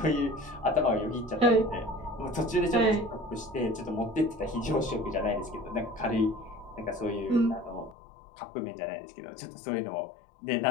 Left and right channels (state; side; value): drops out; right; at 8.0 s